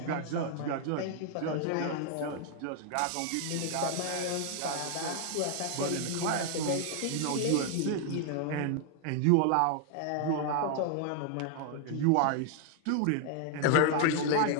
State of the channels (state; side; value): different; both; correlation 0.00